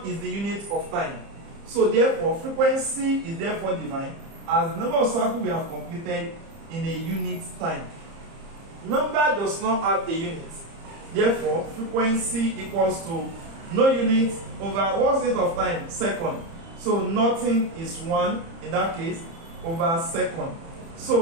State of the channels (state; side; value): late; left; 30 ms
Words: is the unit of time. So therefore, frequency is therefore defined as the number of circles we have completed in a unit time. Number does not have a unit. Therefore, frequency equals to no unit over what's unit of time? Second. So nothing is 1 in that case over second.